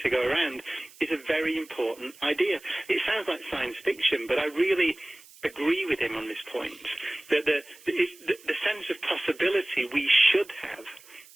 to go around, is a very important idea. It sounds like science fiction, but I really agree with him on this point, that the sense of possibility we should have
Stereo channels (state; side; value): noise; right; hiss, 23 dB below the sound